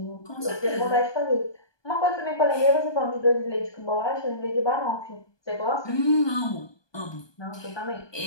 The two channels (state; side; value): late; right; 1.2 ms